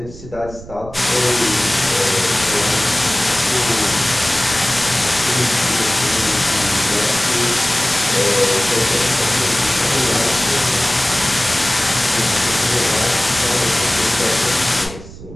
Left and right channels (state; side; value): noise; right; rumble, 16 dB below the sound